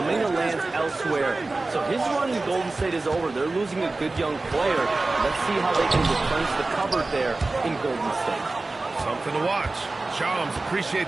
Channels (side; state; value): left; quieter; 3.3 dB